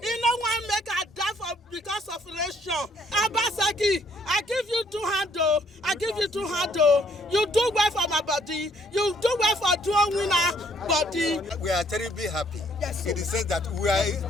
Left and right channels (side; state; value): both; normal; correlation 0.65